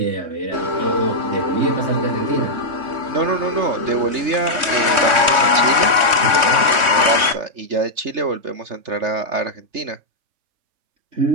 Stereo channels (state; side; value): late; left; 3.2 ms